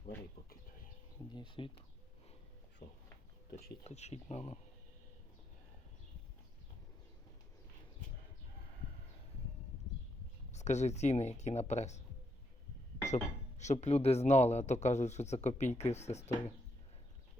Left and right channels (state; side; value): normal; both; correlation 0.78